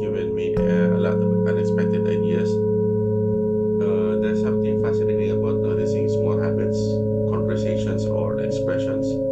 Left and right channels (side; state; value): both; identical; correlation 1.00